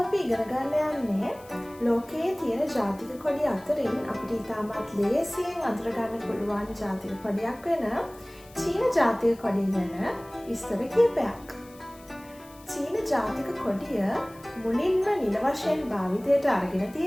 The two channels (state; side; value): noise; left; hiss, 24 dB below the sound